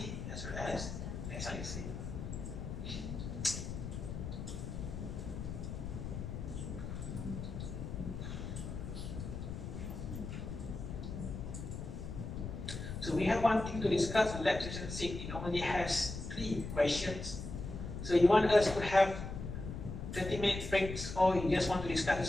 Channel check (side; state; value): left; noise; rumble, 6 dB below the sound